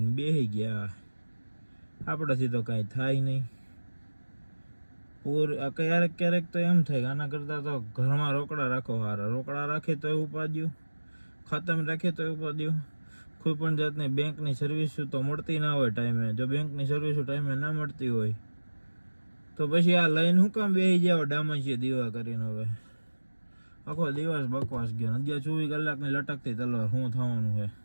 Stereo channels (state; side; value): inverted; both; correlation -1.00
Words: બેસી ગયા. આપણાથી તો કાંઈ થાય નહીં. ક્યારેક ક્યારેક તો એમ થાય કે આના કરતાં તો ઘરમાં રોકડા રાખો સારા. રોકડા રાખે તો ઉપાડ્યું, ખાતામાં રાખે તો ઉપાડ્યું. કોઈ પણ જાતની બેંકની સર્વિસ તો મળતી ના હોય ટાઈમે. જો બેંકની સર્વિસ ટાઈમે ના મળતી હોય તો પછી આ લઈને શું કામ બેસી જાવ ડામચીએ દીવા કરીને. હવે આખો દિવસ બકવાસ ગયો. 24 કલાકની લટકતી તલવાર શું થવાનું છે?